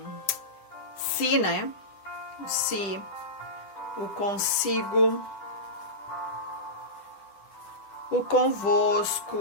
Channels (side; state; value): right; late; 10 ms